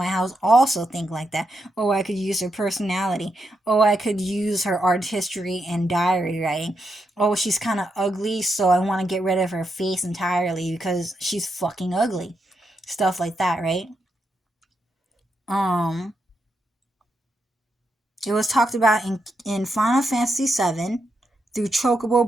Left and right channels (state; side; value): normal; both; correlation 0.83